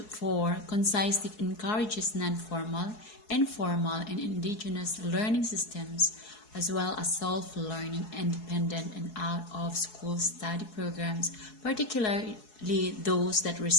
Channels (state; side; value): late; right; 4.7 ms